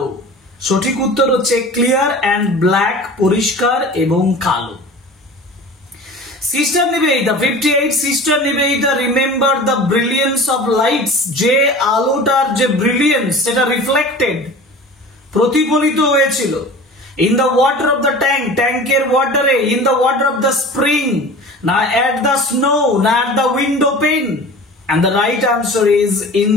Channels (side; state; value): both; normal; correlation 0.38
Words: সঠিক উত্তর হচ্ছে ক্লিয়ার এন্ড ব্ল্যাক পরিষ্কার এবং কালো। Sister Nivedita 58, sister Nivedita remember the brilliance of lights, যে আলোটার যে ব্রিলিয়েন্স সেটা রিফ্লেক্টেড, প্রতিফলিত হয়েছিল। In the water of the tank, ট্যাঙ্কের ওয়াটারে, in the water of the spring, না এট দ্য স্নো, না at the window pane, and the right answer is in